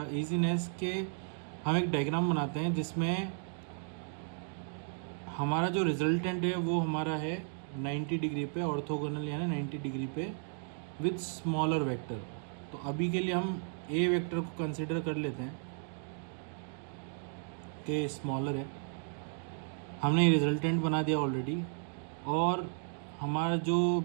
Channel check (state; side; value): silent; left; 55 dB below the other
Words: easiness के हम एक डायग्राम बनाते हैं जिसमें हमारा जो रिजल्टेंट है वो हमारा है 90 डिग्री पे ऑर्थोगोनल यानी 90 डिग्री पे विद स्मॉलर वेक्टर। तो अभी के लिए हम ए वेक्टर को कंसिडर कर लेते हैं कि स्मॉलर है। हमने रिजल्टेंट बना दिया ऑलरेडी और हमारा जो